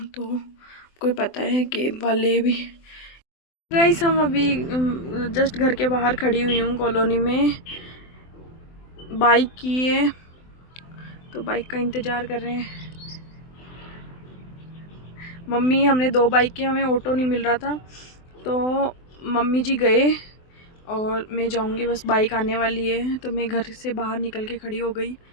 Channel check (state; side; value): late; right; 24 ms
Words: तो कोई पता है कैब वाले भी। गाइस, हम अभी जस्ट घर के बाहर खड़ी हुई हूँ कॉलोनी में। बाइक की है, तो बाइक का इंतज़ार कर रहे हैं। मम्मी, हमने 2 बाइक की, हमें ऑटो नहीं मिल रहा था, तो मम्मी जी गए और मैं जाऊंगी, बस बाइक आने वाली है। तो मैं घर से बाहर निकल के खड़ी हो गई।